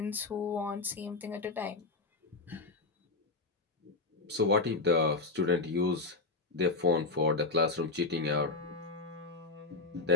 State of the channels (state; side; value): quieter; right; 3.7 dB